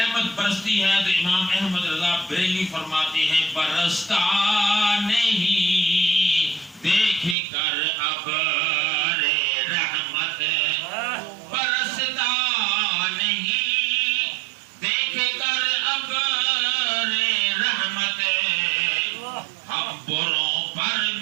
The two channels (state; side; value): drops out; left; at 7.4 s